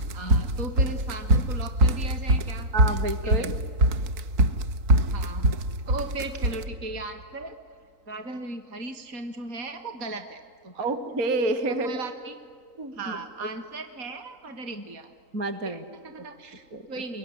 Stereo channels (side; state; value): left; late; 3.8 ms